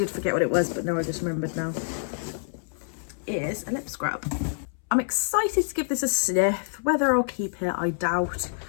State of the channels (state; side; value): silent; right; 60 dB below the other